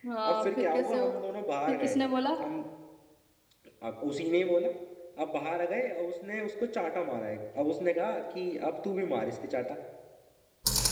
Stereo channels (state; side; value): identical; both; correlation 1.00